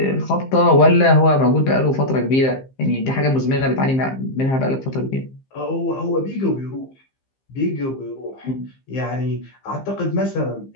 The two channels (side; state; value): right; late; 15 ms